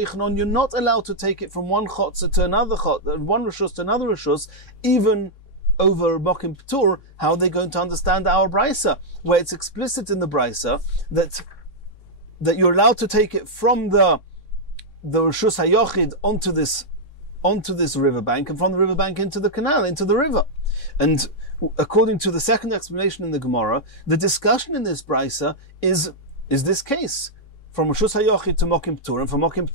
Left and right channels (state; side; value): late; right; 3.6 ms